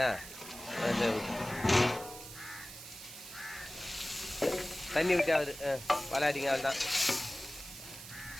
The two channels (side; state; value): right; noise; hiss, 13 dB below the sound